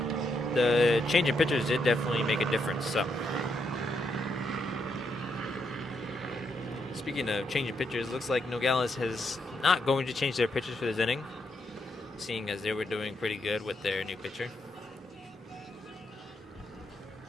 the change in pitchers did definitely make a difference. So, speaking of changing pitchers, looks like Nogales is not going to change their pitchers for this inning, seeing as they were doing pretty good with their new pitcher.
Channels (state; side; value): normal; both; correlation 0.79